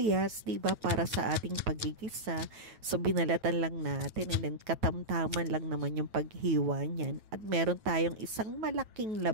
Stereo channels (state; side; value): late; left; 9.2 ms